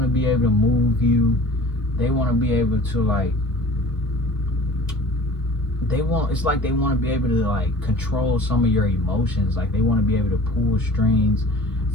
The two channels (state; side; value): normal; both; correlation 0.44